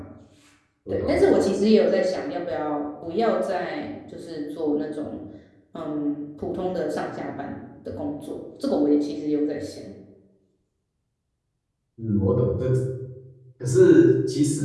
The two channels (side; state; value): both; identical; correlation 1.00